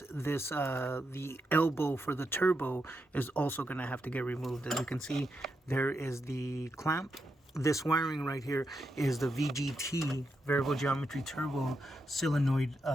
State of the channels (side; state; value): both; normal; correlation 0.85